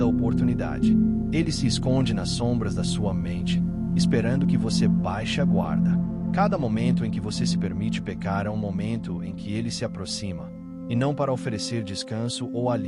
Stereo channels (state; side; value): identical; both; correlation 1.00